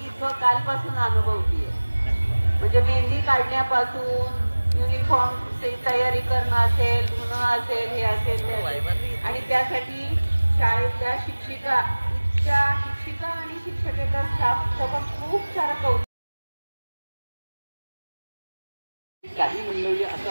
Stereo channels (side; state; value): both; inverted; correlation -1.00